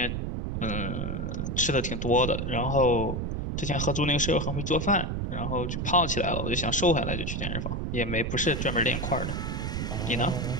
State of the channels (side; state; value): right; noise; rumble, 2 dB below the sound